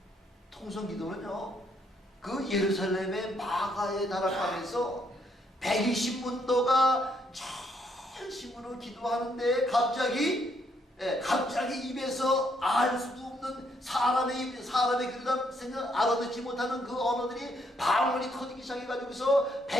통성기도는요, 그 예루살렘의 마가에 다락방에서 120문도가 전심으로 기도하는데 갑자기 입에서 알 수도 없는 사람의 그러다 생각 알아듣지 못하는 그 언어들이 방언이 터지기 시작해가지고서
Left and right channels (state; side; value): normal; both; correlation 0.72